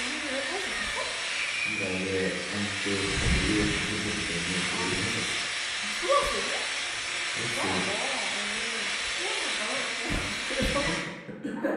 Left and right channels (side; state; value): both; identical; correlation 1.00